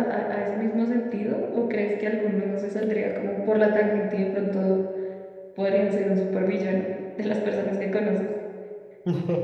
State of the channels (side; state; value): both; identical; correlation 1.00